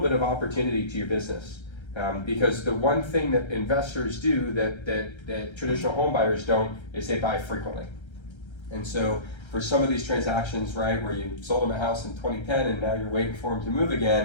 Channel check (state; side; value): late; right; 1.3 ms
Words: bit of opportunity to your business. Because the one thing that investors do that traditional home buyers don't is they buy frequently. And so for some of these transactions, right, where you sold them a house in 2010 and now you're waiting for them to move